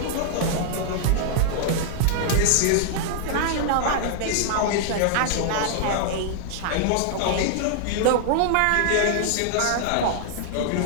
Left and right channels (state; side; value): different; both; correlation -0.01